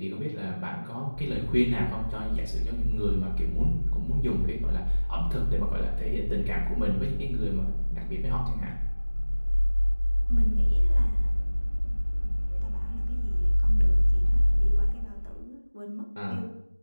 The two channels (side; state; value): both; inverted; correlation -1.00